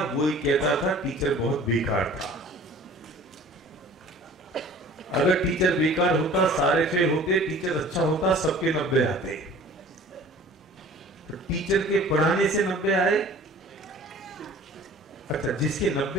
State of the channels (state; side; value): normal; both; correlation 0.47